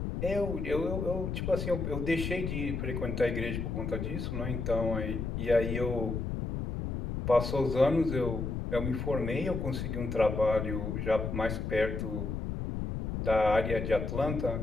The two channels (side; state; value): left; noise; rumble, 3 dB below the sound